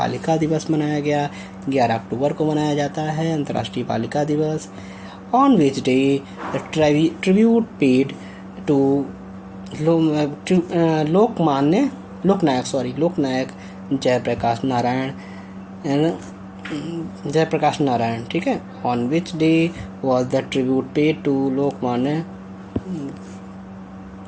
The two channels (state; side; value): identical; both; correlation 1.00